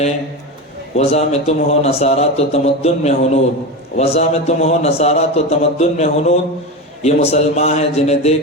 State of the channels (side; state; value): both; normal; correlation 0.21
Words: وضع میں تم ہو نصارہ تو تمدن میں ہنود، وضع میں تم ہو نصارہ تو تمدن میں ہنود، یہ مسلمان ہیں جنہیں